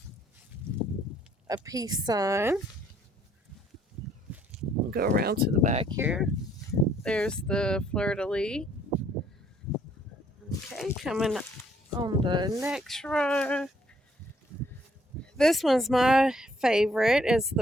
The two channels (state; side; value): normal; both; correlation 0.65